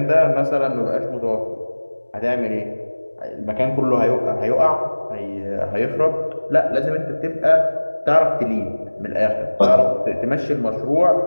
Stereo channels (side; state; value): both; inverted; correlation -1.00